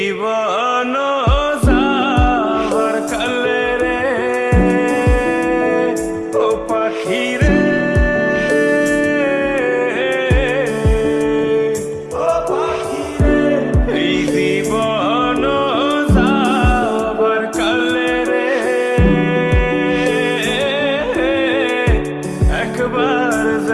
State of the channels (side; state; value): both; identical; correlation 1.00